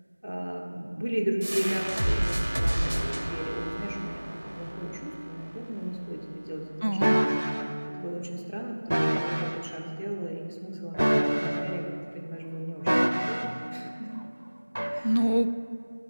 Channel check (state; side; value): inverted; both; correlation -1.00